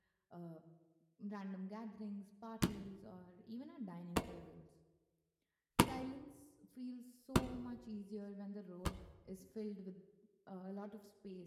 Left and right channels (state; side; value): identical; both; correlation 1.00